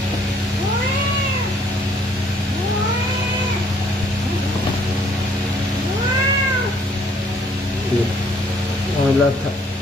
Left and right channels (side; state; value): both; normal; correlation 0.63